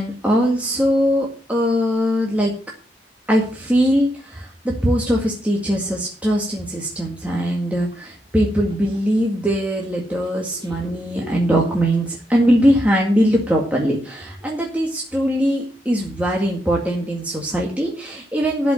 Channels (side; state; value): both; normal; correlation 0.81